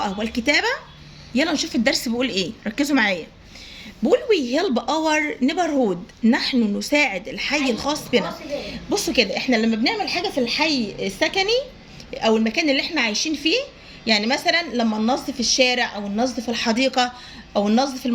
والكتابة. يلا نشوف الدرس بيقول ايه. ركزوا معايا. بقول we help our neighborhood. نحن نساعد الحي الخاص بنا. بصوا كده، احنا لما بنعمل حاجة في الحي السكني او المكان اللي احنا عايشين فيه، يعني مثلا لما ننظف الشارع او ننظف الحديقة او ننظف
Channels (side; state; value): both; identical; correlation 1.00